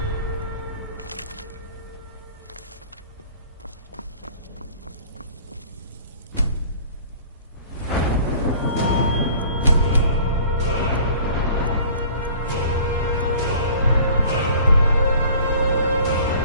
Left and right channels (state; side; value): inverted; both; correlation -0.48